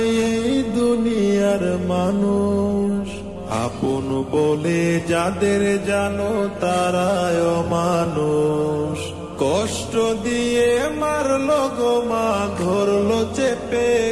এই দুনিয়ার মানুষ, আপন বলে যাদের জানো তারাই অমানুষ। কষ্ট দিয়ে মারলো গো মা, ধরলো চেপে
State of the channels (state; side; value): identical; both; correlation 1.00